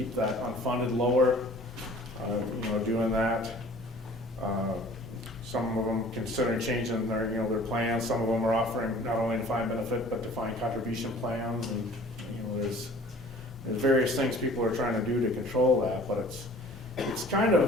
that unfunded lower, doing that. Some of them consider changing their plans. Some of them are offering not only defined benefit, but defined contribution plans. And, there's various things people are trying to do to control that, but it's kind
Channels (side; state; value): both; normal; correlation 0.49